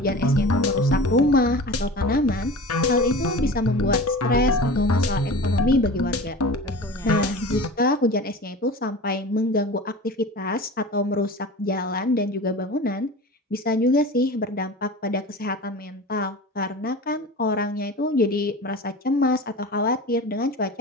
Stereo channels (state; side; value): normal; both; correlation 0.35